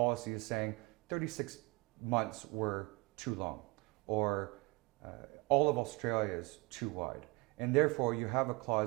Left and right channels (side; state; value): left; quieter; 25.7 dB